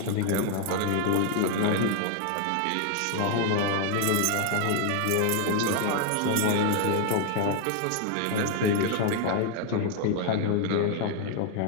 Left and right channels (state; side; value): different; both; correlation 0.00